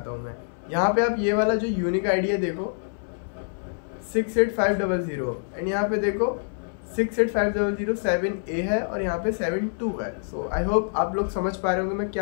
हूँ मैं. यहाँ पे आप ये वाला जो यूनिक आईडी है देखो 68500, एंड यहाँ पे देखो 68500 है और यहाँ पे 72 है. सो आई होप आप लोग समझ पा रहे होंगे मैं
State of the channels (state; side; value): silent; right; digital silence